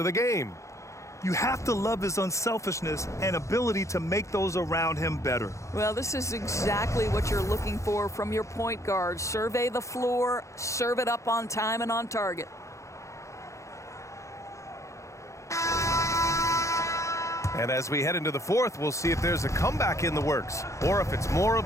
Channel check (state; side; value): late; right; 0.15 ms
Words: the game. You have to love his unselfishness and ability to make those around him better. Well, this is exactly what you're looking for from your point guard. Survey the floor, serve it up on time and on target. And as we head into the fourth, we'll see if there's a comeback in the works or if it's more of